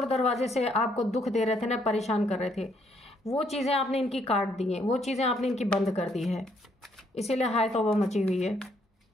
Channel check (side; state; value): both; normal; correlation 0.70